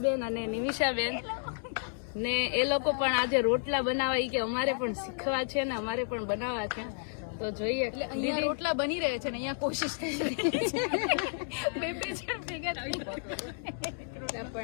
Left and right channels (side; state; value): right; silent; digital silence